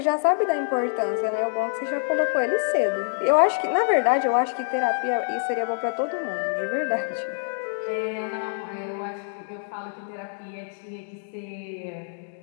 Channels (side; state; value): right; silent; 61 dB below the other